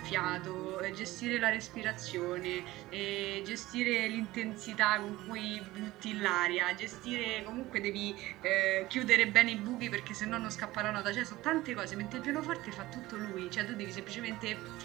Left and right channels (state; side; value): quieter; left; 17.8 dB